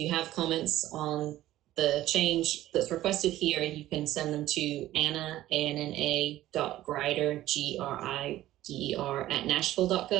have comments on the change that's requested here, you can send them to Anna, ANNA.Grider, GRIDER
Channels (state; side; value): quieter; left; 14.7 dB